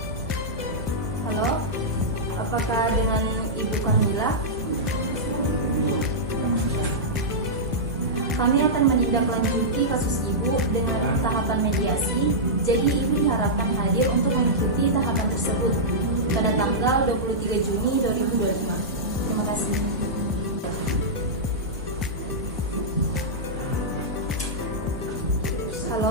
Halo, apakah dengan Ibu Kamila? Kami akan menindaklanjuti kasus Ibu dengan tahapan mediasi, jadi Ibu diharapkan hadir untuk mengikuti tahapan tersebut pada tanggal 23 Juni 2025. Terima kasih.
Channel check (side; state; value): both; normal; correlation -0.11